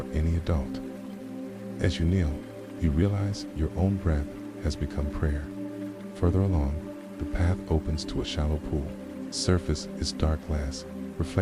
any adult. As you kneel, you realize your own breath has become prayer. Further along, the path opens to a shallow pool. Surface is dark glass,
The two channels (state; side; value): identical; both; correlation 1.00